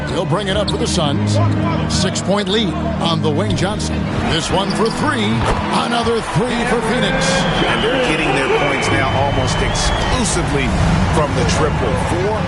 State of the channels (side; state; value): both; identical; correlation 1.00